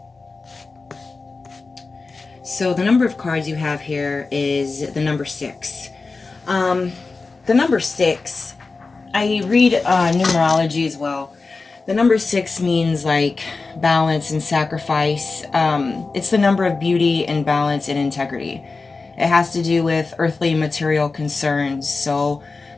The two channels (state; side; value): quieter; right; 4.0 dB